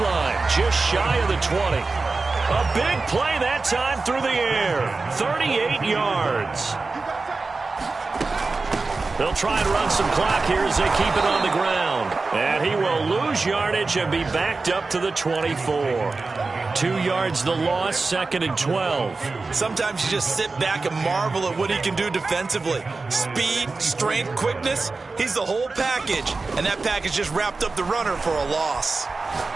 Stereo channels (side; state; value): left; quieter; 3.8 dB